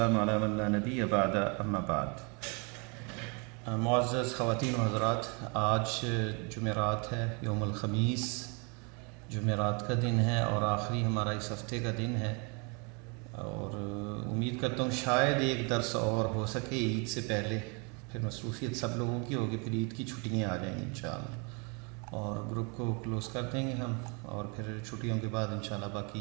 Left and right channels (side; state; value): left; quieter; 33.4 dB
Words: علی من لا نبی بعد اما بعد۔ معزز خواتین و حضرات، آج جمعرات ہے، یوم الخمیس جمعرات کا دن ہے اور آخری ہمارا اس ہفتے کا دن ہے، اور امید کرتا ہوں شاید ایک درس اور ہو سکے عید سے پہلے، پھر مصروفیت سب لوگوں کی ہوگی، پھر عید کی چھٹیاں آ جائیں گی انشاءاللہ، اور گروپ کو کلوز کر دیں گے ہم، اور پھر چھٹیوں کے بعد انشاءاللہ